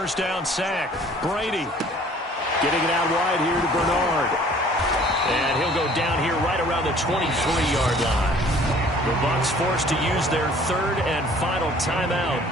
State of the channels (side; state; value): both; normal; correlation 0.53